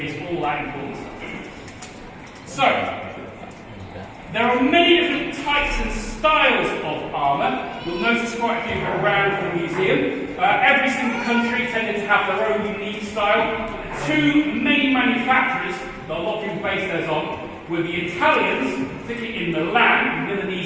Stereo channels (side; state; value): both; identical; correlation 1.00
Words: all that important stuff. So, there are many different types and styles of armour. You'll notice quite a few around the museum. Every single country tended to have their own unique style. Two main manufacturers that a lot of people base theirs on were the Italians, particularly in Milan,